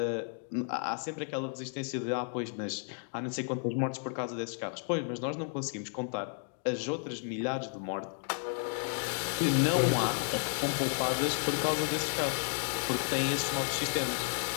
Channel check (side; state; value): right; silent; 56 dB below the other